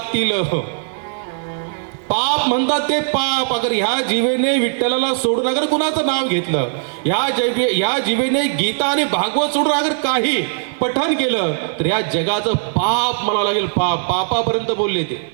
पाप म्हणतात ते पाप. अगर ह्या जीवेने विठ्ठलाला सोडून अगर कुणाचं नाव घेतलं, ह्या जीवेने गीता आणि भागवत सोडून अगर काही पठण केलं, तर या जगाचं पाप मला लागेल. पापापर्यंत बोलले ते.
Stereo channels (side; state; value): left; silent; 56 dB below the other